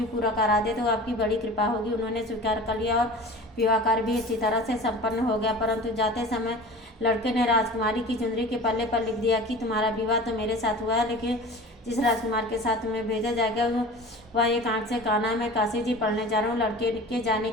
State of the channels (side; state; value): both; normal; correlation 0.39